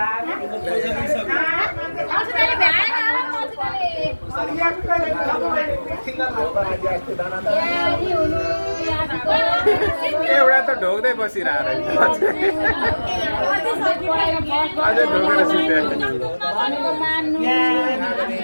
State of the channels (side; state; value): both; inverted; correlation -1.00